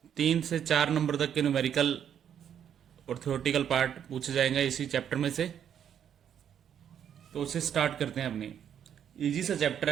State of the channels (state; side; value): quieter; left; 9.0 dB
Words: 3 से 4 नंबर तक के न्यूमेरिकल और थ्योरेटिकल पार्ट पूछे जाएंगे इसी चैप्टर में से। तो उसे स्टार्ट करते हैं। अपनी इजी सा चैप्टर